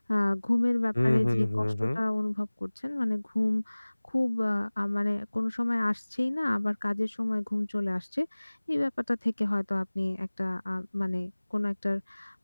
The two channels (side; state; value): both; inverted; correlation -1.00